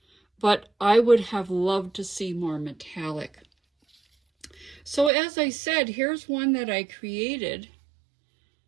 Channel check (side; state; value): left; drops out; at 5.1 s